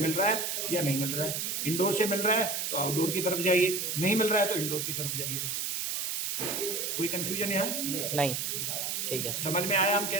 रहा है या नहीं मिल रहा है। इंडोर से मिल रहा है तो आउटडोर की तरफ जाइए, नहीं मिल रहा है तो इंडोर की तरफ जाइए। कोई कंफ्यूजन है? नहीं, ठीक है, समझ में आया हम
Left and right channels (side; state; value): right; noise; hiss, 1 dB below the sound